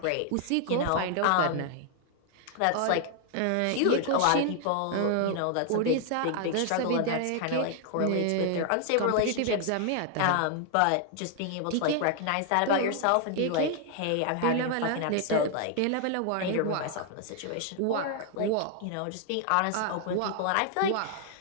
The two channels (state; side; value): different; both; correlation 0.00